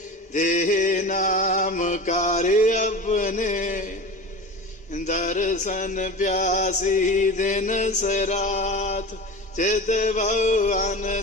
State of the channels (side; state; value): both; normal; correlation 0.31